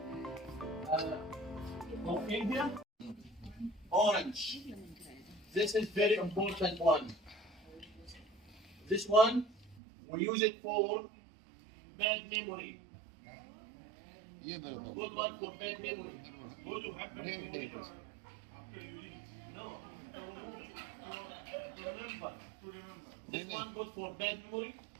Of India, orange. This is very important one. This one, we use it for bad memory. Good one for bad memory. No. To remember. This one good for bad memory,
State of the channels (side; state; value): left; drops out; at 9.8 s